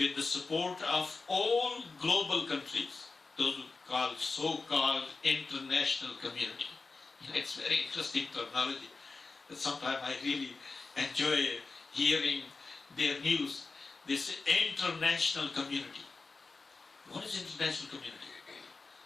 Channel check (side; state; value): right; quieter; 4.0 dB